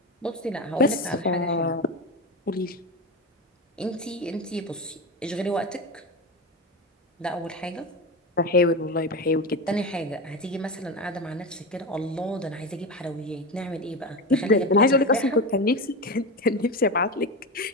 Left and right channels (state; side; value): normal; both; correlation 0.21